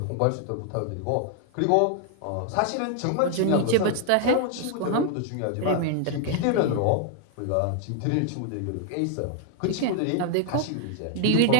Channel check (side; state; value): both; different; correlation 0.00